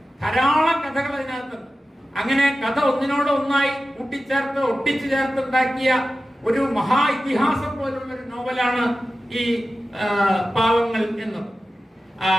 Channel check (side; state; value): both; normal; correlation 0.94